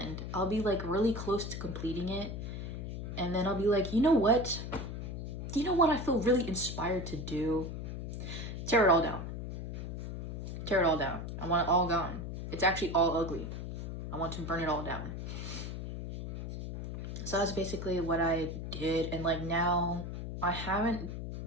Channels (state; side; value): noise; left; hum, 6 dB below the sound